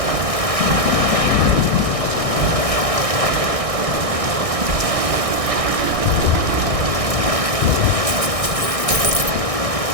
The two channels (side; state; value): left; late; 1.6 ms